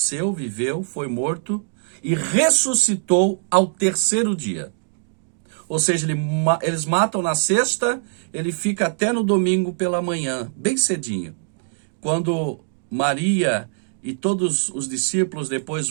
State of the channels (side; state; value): left; silent; digital silence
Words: viveu, foi morto, e ressuscitou ao terceiro dia. Ou seja, eles matam na sexta, ele fica até no domingo pela manhã, bem cedinho. Quando Maria e todos os discípulos depois